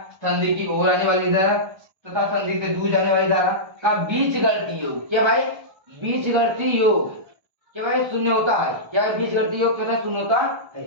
संधि की ओर आने वाली धारा तथा संधि से दूर जाने वाली धारा का बीजगणितीय योग क्या भाई बीजगणितीय योग क्या भाई शून्य होता है। क्या बीजगणितीय योग क्या शून्य होता है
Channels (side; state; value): left; late; 1.3 ms